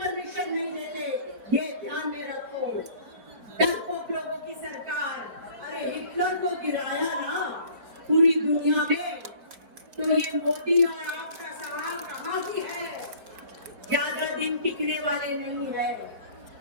नहीं लेते। ये ध्यान में रखो। डरपोक लोगों की सरकार, अरे हिटलर को गिराया ना पूरी दुनिया में, तो ये मोदी और आपका सवाल कहाँ की है? ज्यादा दिन टिकने वाले नहीं है।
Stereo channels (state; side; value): late; left; 4.6 ms